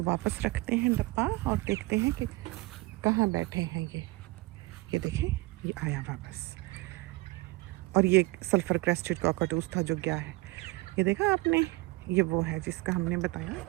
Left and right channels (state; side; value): quieter; left; 21.9 dB